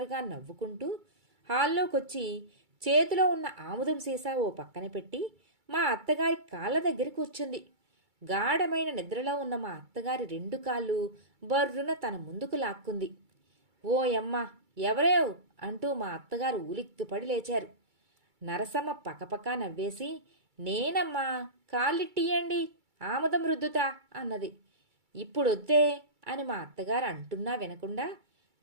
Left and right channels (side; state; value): left; late; 2.3 ms